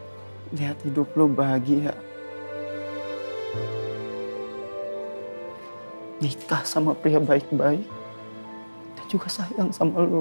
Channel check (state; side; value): inverted; both; correlation -1.00